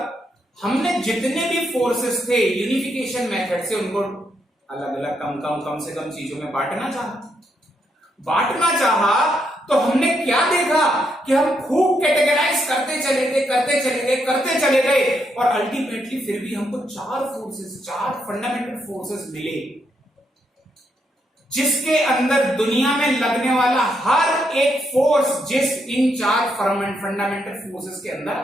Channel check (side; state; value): both; normal; correlation 0.78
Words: हमने जितने भी फोर्सेस थे यूनिफिकेशन मेथड से उनको अलग अलग कम से कम चीजों में बांटना चाहा तो हमने क्या देखा कि हम खूब कैटेगराइज करते चले गए और अल्टीमेटली फिर भी हमको चार फंडामेंटल फोर्सेस मिले, जिसके अंदर दुनिया में लगने वाला हर एक फोर्स इन चार फंडामेंटल फोर्सेस के अंदर